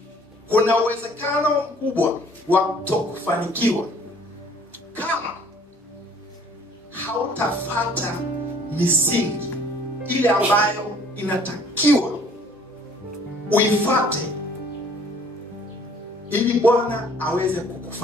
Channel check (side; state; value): both; normal; correlation 0.56